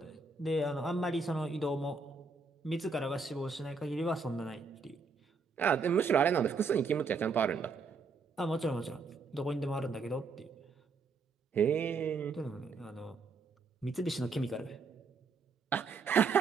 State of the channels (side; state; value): left; quieter; 4.5 dB